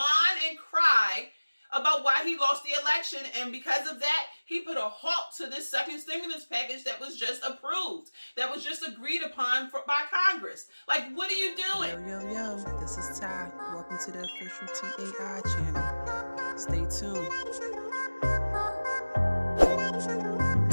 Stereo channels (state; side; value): inverted; both; correlation -1.00